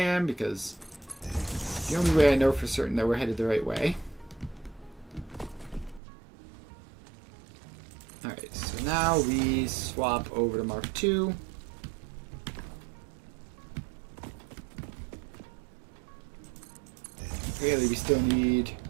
because the only way I know for certain that we're headed the right way. Alright, so now we swap over to Mark II. Really, we still need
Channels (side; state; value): left; drops out; at 6.0 s